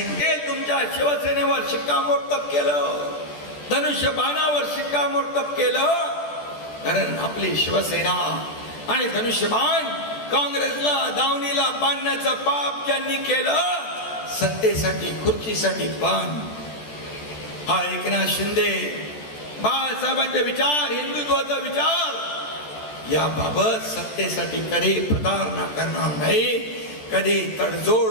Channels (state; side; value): late; right; 14 ms